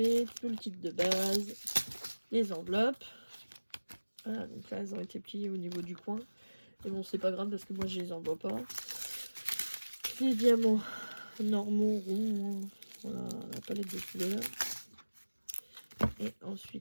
tout le kit de base, les enveloppes. Voilà, donc là, elles ont été pliées au niveau du coin. Mais bon, c'est pas grave parce que moi, je les envoie pas. Les diamants normaux, ronds. Voilà, la palette de couleurs. Et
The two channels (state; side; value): inverted; both; correlation -1.00